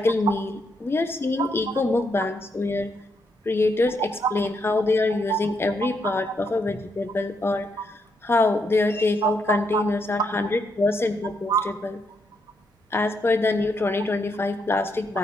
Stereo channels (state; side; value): normal; both; correlation 0.78